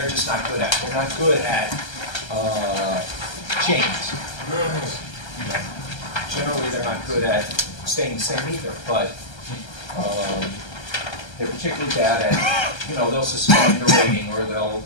just not good at. They're not good at change. Generally, they're not good at staying the same either, but they're particularly bad at, you know, they'll suspend a rating, or they'll,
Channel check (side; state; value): right; late; 1.3 ms